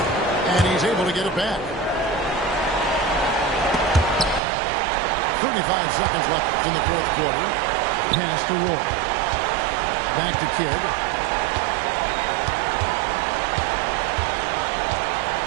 And he's able to get it back. 35 seconds left in the fourth quarter. Pass to Roy. Back to Kidd.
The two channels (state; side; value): drops out; left; at 4.4 s